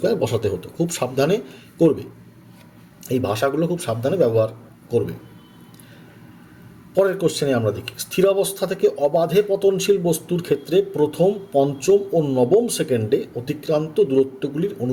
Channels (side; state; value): both; identical; correlation 1.00